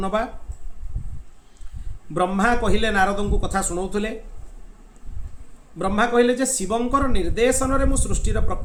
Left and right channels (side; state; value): both; identical; correlation 1.00